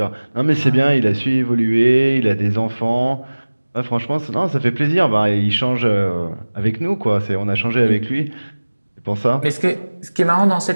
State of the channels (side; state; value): both; inverted; correlation -1.00